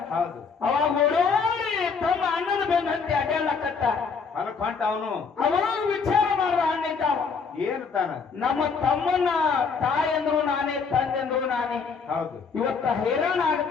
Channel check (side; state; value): right; quieter; 5.4 dB